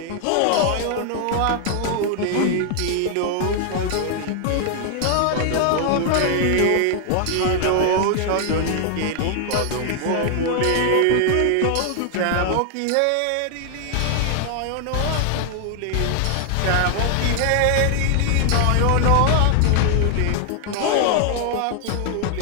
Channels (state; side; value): different; both; correlation 0.00